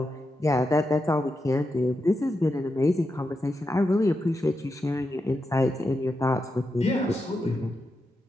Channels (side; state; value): both; normal; correlation 0.87